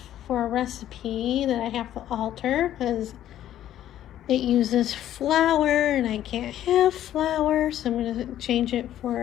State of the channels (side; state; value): right; quieter; 12.0 dB